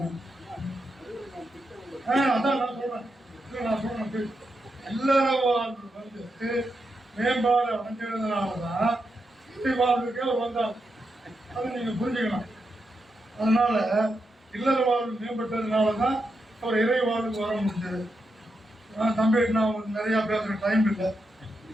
அதான் நான் சொல்றேன். இல்லற வாழ்வு வந்து மேம்பாடு அடைஞ்சதுனாலதான் இறை வாழ்வுக்கே வந்தாங்க. அதை நீங்க புரிஞ்சுக்கணும். அதனால இல்லற வாழ்வு மேம்பட்டதுனாலதான் அவர் இறை வாழ்வுக்கு வர முடிஞ்சது. தம்பி நான் நிறைய பேசுற டைம் இல்லை.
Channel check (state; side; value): normal; both; correlation 0.85